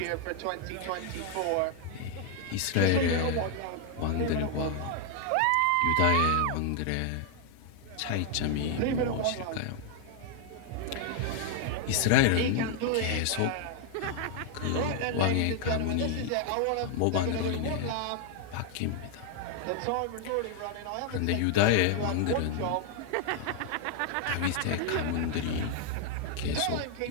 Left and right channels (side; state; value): both; different; correlation 0.00